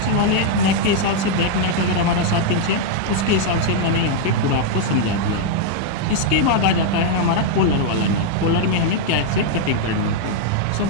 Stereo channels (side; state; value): both; different; correlation 0.00